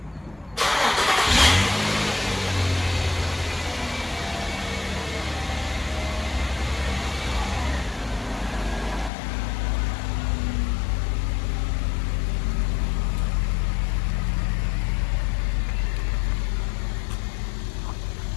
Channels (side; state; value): right; drops out; at 9.1 s